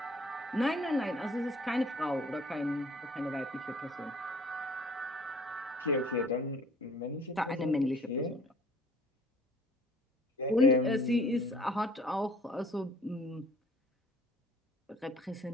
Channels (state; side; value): normal; both; correlation 0.55